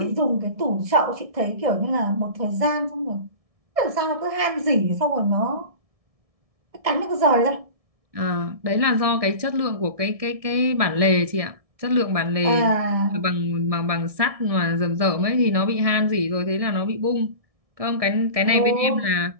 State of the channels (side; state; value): left; late; 1.7 ms